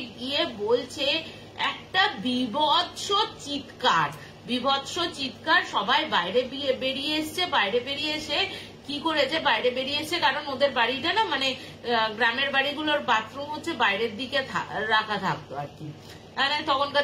গিয়ে বলছে একটা বিভৎস চিৎকার, সবাই বাইরে বেরিয়ে এসে কি করেছে, বাইরে বেরিয়ে এসে, কারণ ওদের বাড়িটা না মানে গ্রামের বাড়িগুলোর বাথরুম হচ্ছে বাইরের দিকে রাখা থাকতো আর কি, মানে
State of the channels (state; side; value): identical; both; correlation 1.00